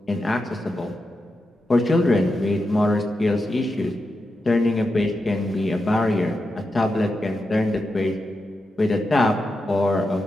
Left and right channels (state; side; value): normal; both; correlation 0.88